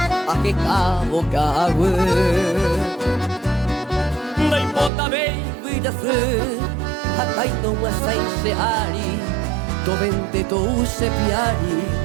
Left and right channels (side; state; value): left; drops out; at 4.9 s